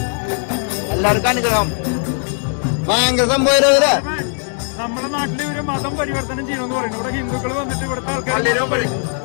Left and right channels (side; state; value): right; silent; 57 dB below the other